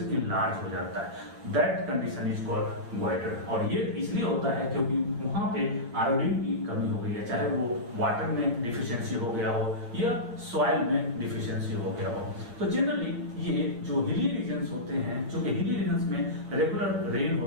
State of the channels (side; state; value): left; late; 8.2 ms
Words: लार्ज हो जाता है। That condition is called goitre. और ये इसलिए होता है क्योंकि वहां पे आयोडीन की कमी हो गई है, चाहे वो वाटर में डिफिशियंसी हो गया हो या सॉइल में डिफिशियंसी हो गया हो। तो जनरली ये जो हिली रीजन्स होते हैं, चूंकि हिली रीजन्स में रेगुलर रेन